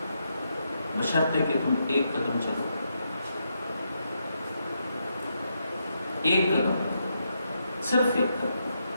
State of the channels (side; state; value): both; inverted; correlation -0.81